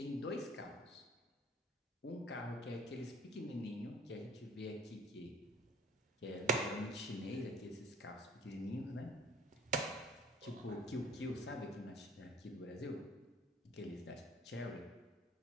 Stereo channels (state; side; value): normal; both; correlation 0.52